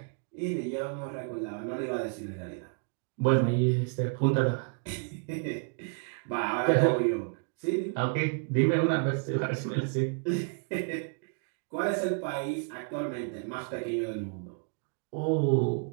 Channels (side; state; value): left; quieter; 39.6 dB